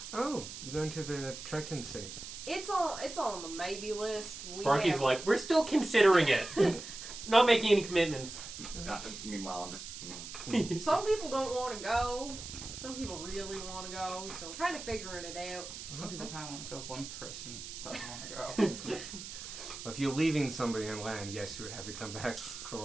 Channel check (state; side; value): noise; right; hiss, 10 dB below the sound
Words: Oh, you're going to the Triton City. it's on the maybe list. Sparky's like, we're still considering it. Not making any commitments. Meanwhile, I'm just. Some people don't want to go. Some people really want to go. So we're kind of figuring it out. Some people kind of want to go. One person doesn't want to go. If you're leaving somebody on land, yes, you would have to come back